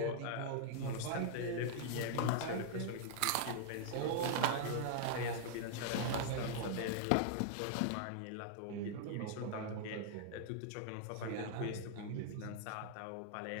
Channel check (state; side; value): different; both; correlation -0.01